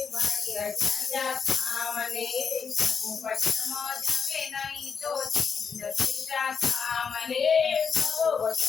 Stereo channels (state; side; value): quieter; right; 6.1 dB